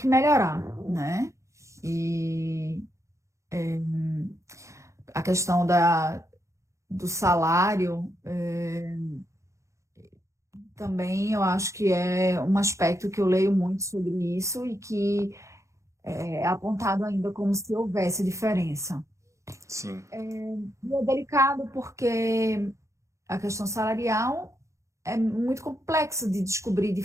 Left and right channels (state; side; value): late; left; 0.15 ms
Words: melhorar, né? E a questão do salário, também eu acho que é um aspecto que eu leio muito sobre isso e que é apontado ainda como se houvesse diferença. Sim. E é delicado porque a questão salarial é muito complexo de descobrir de